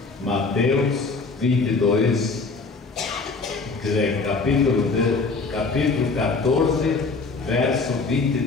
Mateus 22, quer dizer, capítulo 14, verso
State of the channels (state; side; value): quieter; right; 4.1 dB